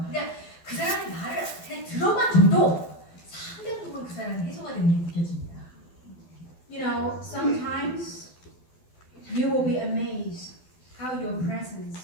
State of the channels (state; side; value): late; right; 12 ms